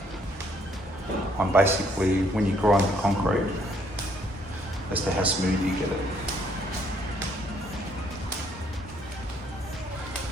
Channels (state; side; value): normal; both; correlation 0.67